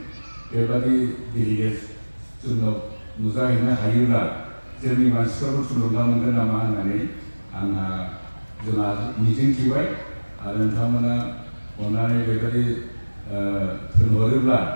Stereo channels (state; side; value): inverted; both; correlation -1.00